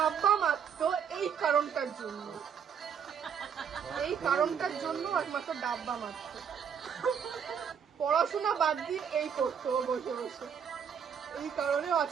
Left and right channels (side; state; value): left; quieter; 7.5 dB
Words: মারতো এই কারণটার জন্য, এই কারণটার জন্য একমাত্র ডাব্বা মারতো। পড়াশোনা বাদ দিয়ে এই করতো ও বসে বসে, এই কারণে ও